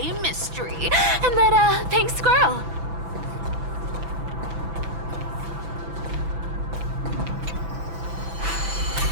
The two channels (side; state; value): left; late; 6.0 ms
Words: Mystery and that, pink squirrel.